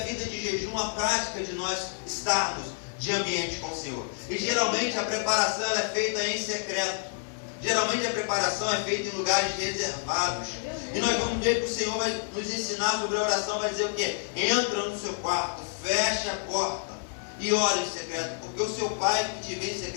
de jejum, a prática de nós estarmos de ambiente com o Senhor. E geralmente a preparação ela é feita em secreto. Geralmente a preparação é feita em lugares reservados. E nós vamos ver que o Senhor vai nos ensinar sobre a oração, vai dizer o quê? Entra no seu quarto, fecha a porta e ora em secreto, porque o seu pai que te vê em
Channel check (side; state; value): right; silent; 57 dB below the other